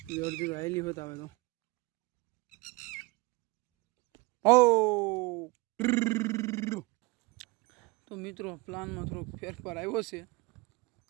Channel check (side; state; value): left; quieter; 24.4 dB